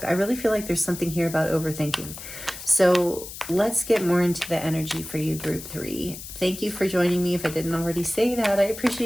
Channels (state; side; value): noise; left; hiss, 12 dB below the sound